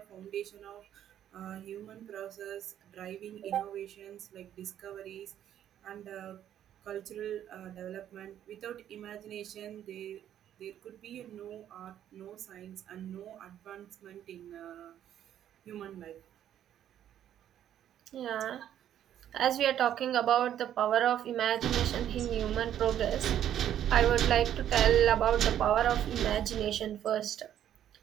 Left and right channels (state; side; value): quieter; left; 10.7 dB